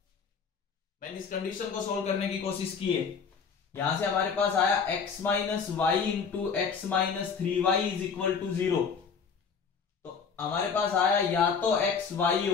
मैंने इस कंडीशन को सोल्व करने की कोशिश की है। यहां से हमारे पास आया x minus y into x minus 3y is equal to 0। तो हमारे पास आया या तो x y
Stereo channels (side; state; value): right; quieter; 5.9 dB